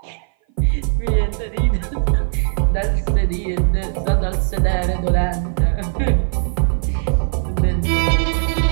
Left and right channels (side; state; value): left; silent; 57 dB below the other